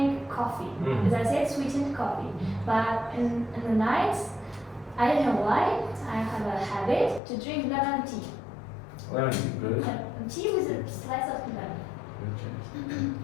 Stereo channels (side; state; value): right; drops out; at 7.2 s